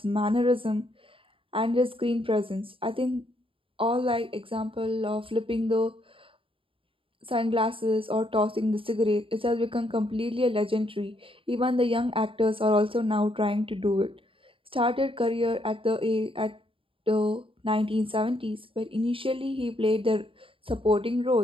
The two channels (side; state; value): left; late; 0.26 ms